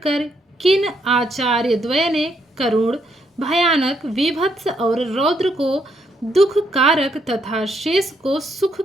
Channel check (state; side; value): normal; both; correlation 0.75